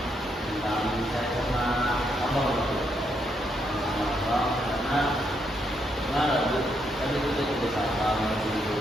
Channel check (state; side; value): normal; both; correlation 0.77